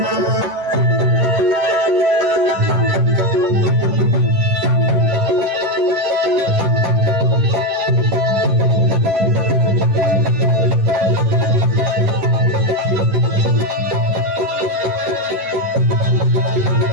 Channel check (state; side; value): late; left; 11 ms